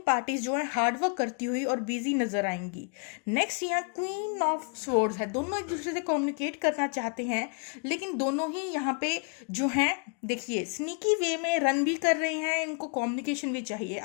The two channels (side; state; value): right; quieter; 39.8 dB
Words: जो है हार्ड वर्क करती हुई और बिजी नजर आएंगी। नेक्स्ट यहाँ क्वीन ऑफ स्वॉर्ड्स है, दोनों एक दूसरे से कम्युनिकेट करना चाहते हैं, लेकिन दोनों ही यहाँ पे जो हैं देखिए स्नीकी वे में रन भी कर रहे हैं, इनको कम्युनिकेशन भी चाहिए।